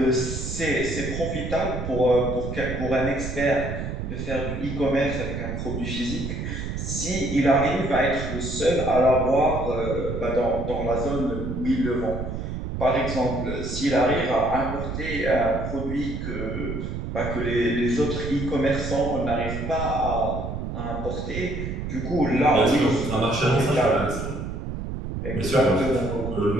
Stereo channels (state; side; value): noise; right; rumble, 5 dB below the sound